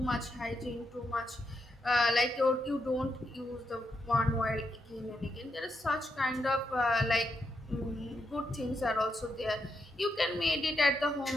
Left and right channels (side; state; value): both; normal; correlation 0.82